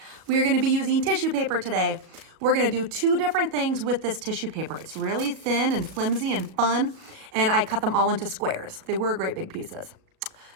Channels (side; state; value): left; late; 37 ms